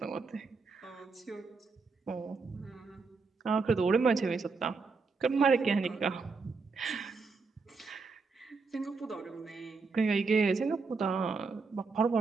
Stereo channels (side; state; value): left; quieter; 4.5 dB